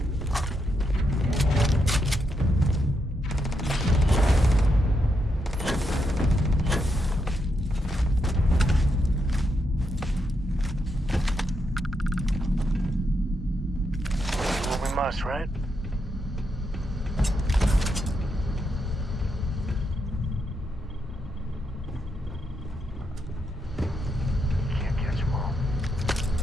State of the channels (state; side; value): normal; both; correlation 0.81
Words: Well, we must, right? Can't catch them all.